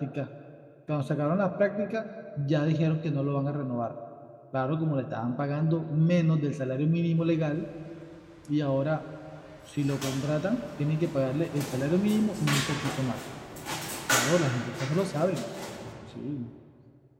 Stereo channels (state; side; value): identical; both; correlation 1.00